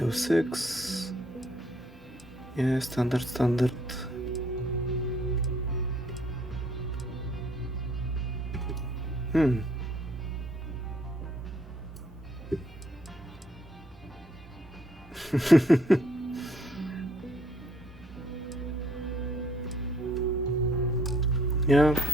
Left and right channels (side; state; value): both; normal; correlation 0.65